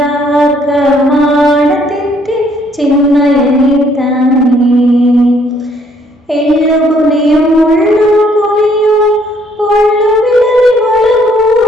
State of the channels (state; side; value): normal; both; correlation 0.65